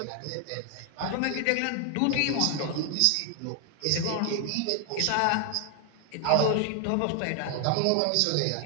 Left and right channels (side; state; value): both; different; correlation 0.00